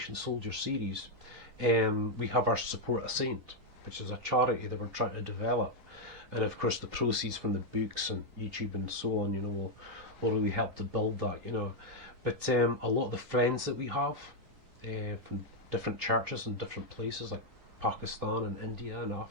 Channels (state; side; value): late; left; 3.9 ms